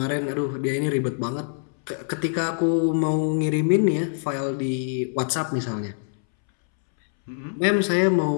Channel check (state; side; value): silent; right; 62 dB below the other